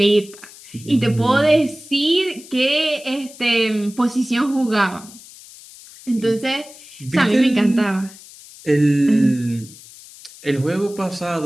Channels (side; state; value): left; noise; hiss, 20 dB below the sound